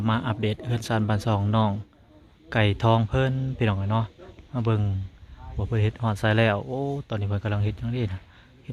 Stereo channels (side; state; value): both; identical; correlation 1.00